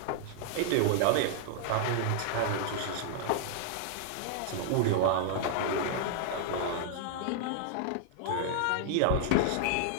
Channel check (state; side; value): different; both; correlation -0.01